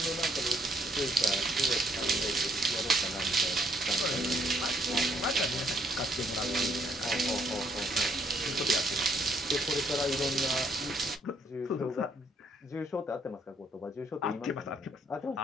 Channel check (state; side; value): normal; both; correlation 0.69